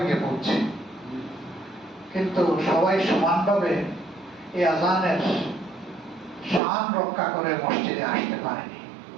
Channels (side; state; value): left; drops out; at 6.6 s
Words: গিয়ে পৌঁছে। কিন্তু সবাই সমানভাবে এই আজানের শান রক্ষা করে মসজিদে আসতে পারেনি।